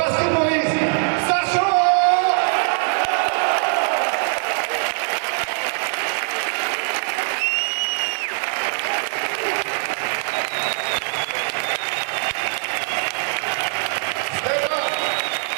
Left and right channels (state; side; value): silent; left; 60 dB below the other